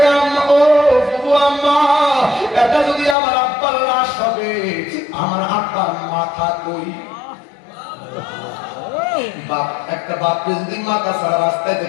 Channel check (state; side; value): drops out; right; at 3.2 s